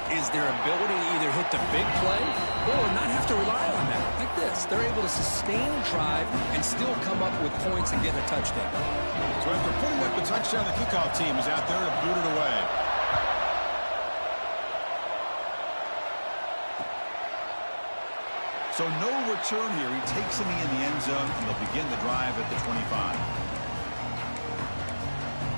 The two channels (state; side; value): inverted; both; correlation -1.00